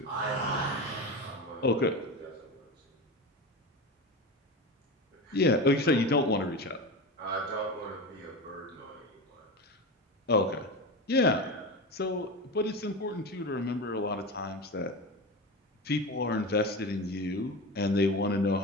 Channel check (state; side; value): normal; both; correlation 0.24